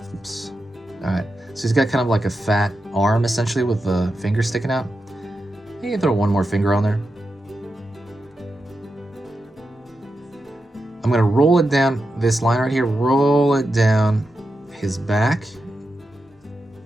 Oops. All right, so he's got kind of like a fat arm essentially with the finger sticking out. You can throw one more finger on there. I'm gonna roll it down this line right here, roll it down his back.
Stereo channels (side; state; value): both; normal; correlation 0.89